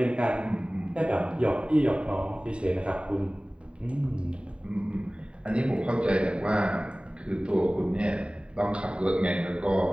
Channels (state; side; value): late; left; 0.054 ms